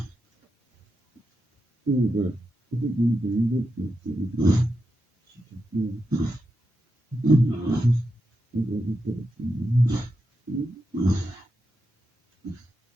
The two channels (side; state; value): both; normal; correlation 0.87